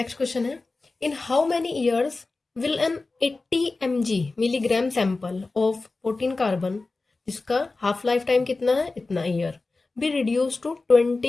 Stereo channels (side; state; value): right; quieter; 3.6 dB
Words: क्वेश्चन है, in how many years will an 80 mg milligram sample of 14 carbon, जिसका हाफ लाइफ टाइम कितना है, इतना year, be reduce to